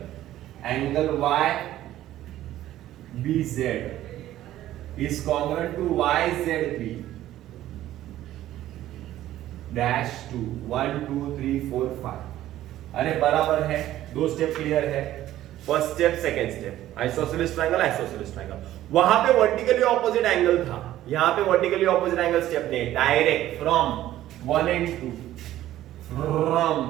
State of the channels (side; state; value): left; quieter; 13.7 dB